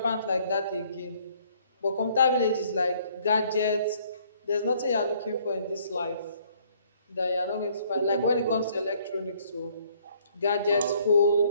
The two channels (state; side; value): inverted; both; correlation -0.62